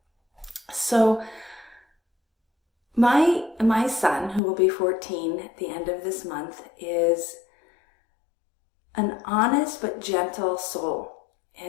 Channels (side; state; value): right; drops out; at 4.4 s